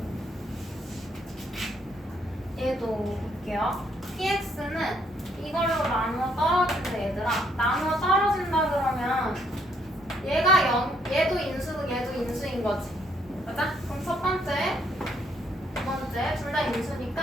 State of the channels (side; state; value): both; normal; correlation 0.70